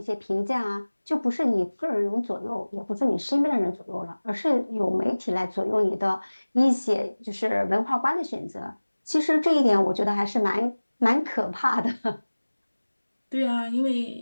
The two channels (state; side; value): inverted; both; correlation -1.00